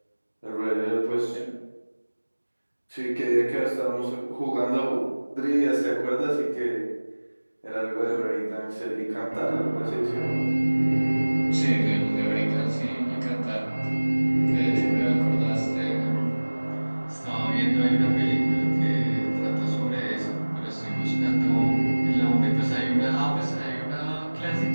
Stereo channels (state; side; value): inverted; both; correlation -1.00